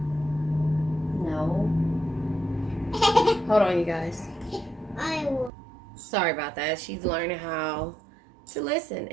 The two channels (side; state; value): left; drops out; at 5.5 s